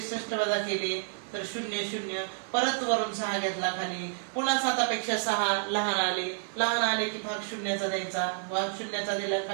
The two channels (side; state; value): left; silent; 58 dB below the other